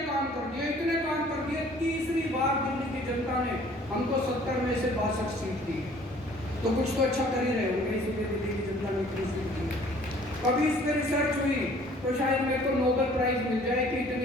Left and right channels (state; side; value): normal; both; correlation 0.55